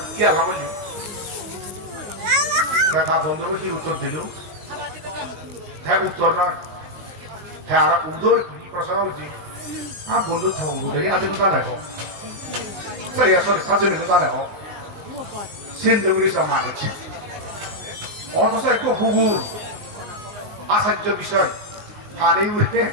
কি আল্লাহ বললি তার বন্ধু কি উত্তর দিল হ্যাঁ উত্তর নয় হ্যাঁ আর উত্তর কি প্রশ্ন হচ্ছে বন্ধু থগুরে আদম জানাবো সেই আসলে সাজনে জানাবো সিন্ধুগুলি সমান হচ্ছে অথচ একটু হুগুর আচার্য বিষয় পানি উঠে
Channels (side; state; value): left; late; 19 ms